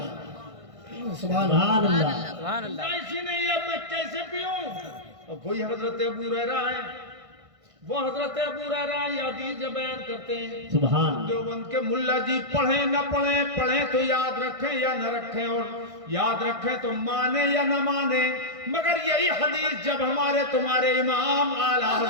سبحان اللہ، سبحان اللہ۔ ایسی نہیں اب میں کیسے پیوں؟ اب وہی حضرت ابو ہریرہ ہے، وہ حضرت ابو ہریرہ یہ حدیث جو بیان کرتے ہیں، سبحان دیوبند کے ملا جی پڑھیں نہ پڑھیں، پڑھیں تو یاد رکھیں یا نہ رکھیں، اور یاد رکھیں تو مانیں یا نہ مانیں، مگر یہی حدیث جب ہمارے تمہارے امام اعلیٰ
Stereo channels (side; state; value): left; late; 1.6 ms